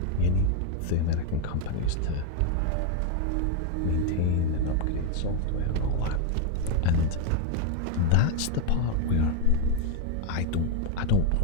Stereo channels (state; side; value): different; both; correlation 0.01